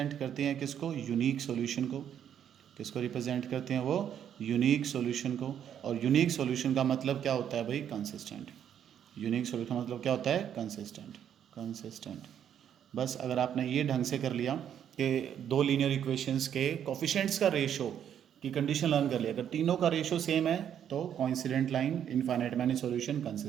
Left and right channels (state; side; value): quieter; left; 9.3 dB